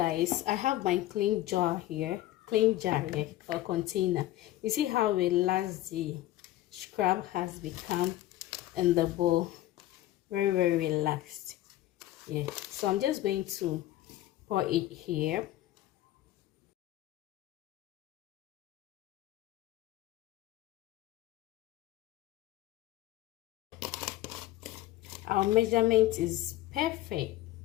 I have my clean jar here or container. You see how relaxed the scrub has become in the bowl. Very relaxed. Yeah, so I'm just going to pour it here. Our measurement is perfect.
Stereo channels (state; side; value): quieter; right; 15.1 dB